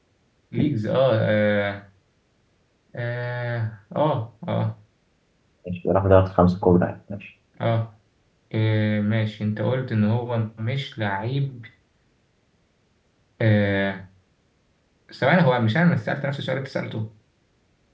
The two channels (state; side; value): identical; both; correlation 1.00